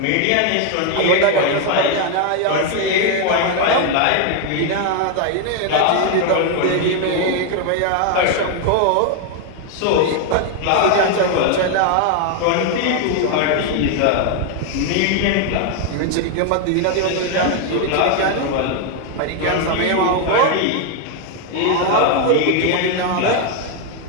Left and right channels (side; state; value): both; different; correlation 0.01